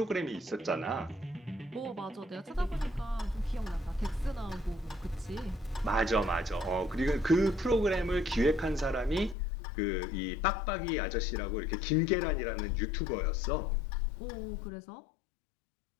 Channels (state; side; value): drops out; right; at 9.3 s